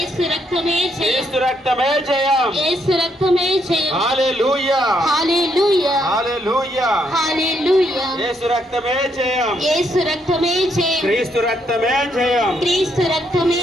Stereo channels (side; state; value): both; normal; correlation 0.74